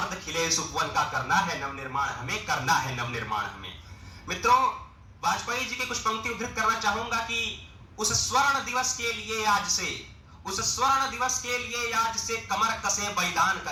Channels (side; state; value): both; identical; correlation 1.00